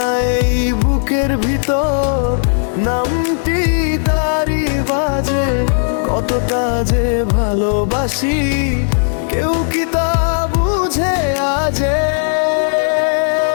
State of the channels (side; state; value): right; silent; digital silence